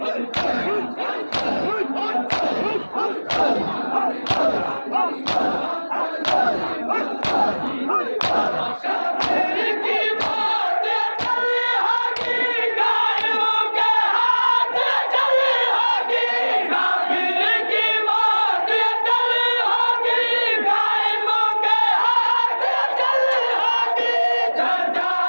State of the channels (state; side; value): inverted; both; correlation -1.00